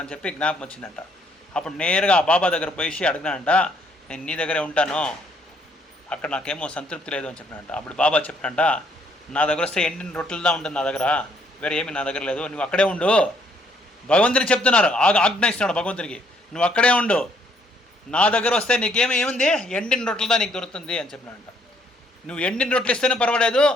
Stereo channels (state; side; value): normal; both; correlation 0.68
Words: అని చెప్పి జ్ఞాపకం వచ్చిందంట. అప్పుడు నేరుగా ఆ బాబా దగ్గర పోయి అడిగినానంట, నేను నీ దగ్గరే ఉంటాను, అక్కడ నాకేమో సంతృప్తి లేదు అని చెప్పినంట. అప్పుడు బాబా చెప్పినంట, నా దగ్గర వస్తే ఎండిన రొట్టెలుదా ఉంటుంది నా దగ్గర, వేరే ఏమి నా దగ్గర లేదు, నువ్వు అక్కడే ఉండు. భగవంతుని చెప్తున్నారు, ఆజ్ఞాయిస్తున్నాడు భగవంతునికి, నువ్వు అక్కడే ఉండు, నా దగ్గర వస్తే ఏముంది ఎండిన రొట్టెలుదా నీకు దొరుకుతుంది అని చెప్పినాడంట. నువ్వు ఎండిన రొట్టెలు ఇస్తేనే పర్వాలేదు,